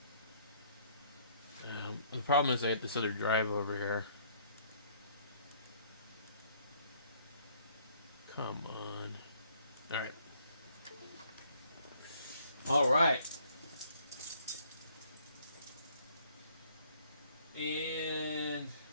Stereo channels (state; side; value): inverted; both; correlation -0.63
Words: The problem is I have this other drive over here. Come on. Alright. Alright. And